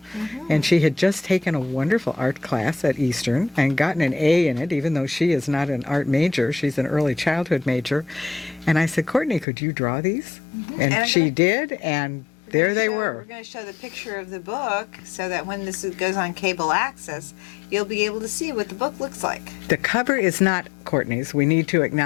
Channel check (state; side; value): drops out; right; at 9.5 s